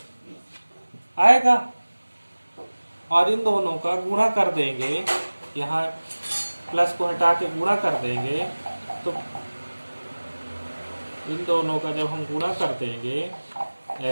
आएगा। और इन दोनों का गुणा कर देंगे, यहाँ प्लस को हटा के गुणा कर देंगे तो इन दोनों का जब हम गुणा कर देंगे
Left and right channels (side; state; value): both; inverted; correlation -1.00